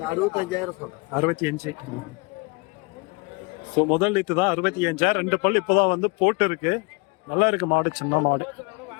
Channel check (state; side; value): quieter; right; 29.4 dB